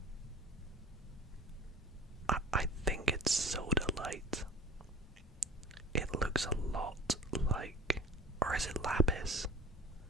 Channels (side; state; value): both; normal; correlation 0.38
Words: I think it's soda light. It looks a lot like, or is it lapis?